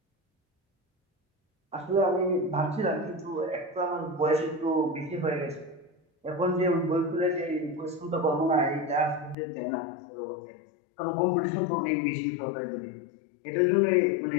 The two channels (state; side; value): drops out; right; at 9.3 s